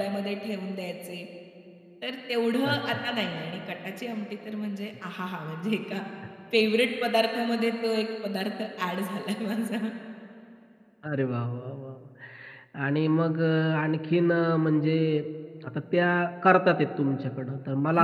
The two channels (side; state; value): both; identical; correlation 1.00